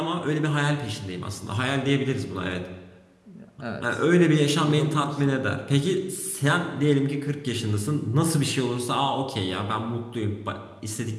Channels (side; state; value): both; identical; correlation 1.00